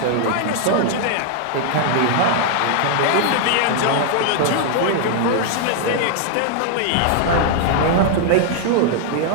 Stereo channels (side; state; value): both; different; correlation 0.00